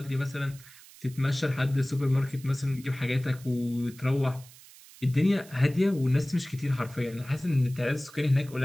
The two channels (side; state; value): right; noise; hiss, 21 dB below the sound